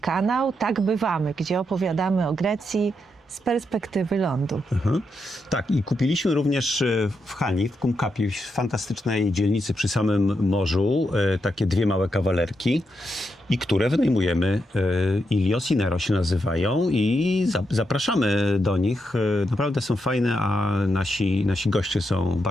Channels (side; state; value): both; normal; correlation 0.83